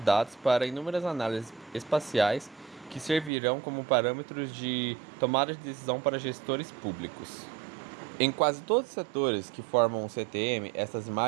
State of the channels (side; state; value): left; drops out; at 3.3 s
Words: para inúmeras análises espaciais que servirão como parâmetros de tomada de decisão para gestores públicos. Em quase todos os setores que formam o CTM, essas